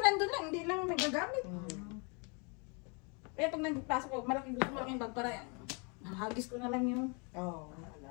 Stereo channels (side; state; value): right; quieter; 33.9 dB